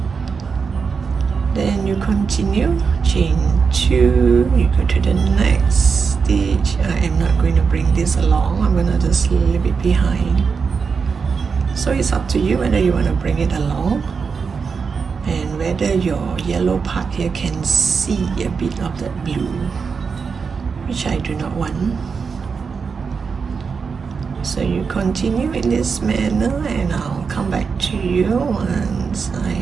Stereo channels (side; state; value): left; quieter; 5.5 dB